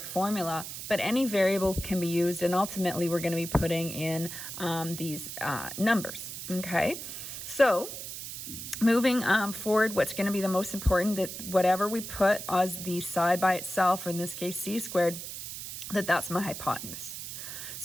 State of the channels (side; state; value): right; noise; hiss, 8 dB below the sound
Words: but any variable can be used, and ultimately we're going to be putting in these numbers, okay? So, moving forward, what's going to be the most important, that whatever we put as the side by itself, or in this case c squared, that's my hypotenuse.